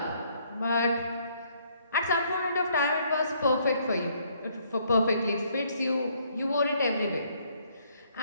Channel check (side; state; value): both; inverted; correlation -0.67